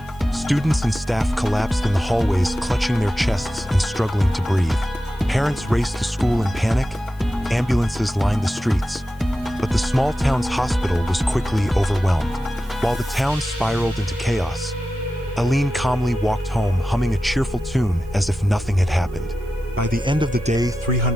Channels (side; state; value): right; noise; hiss, 29 dB below the sound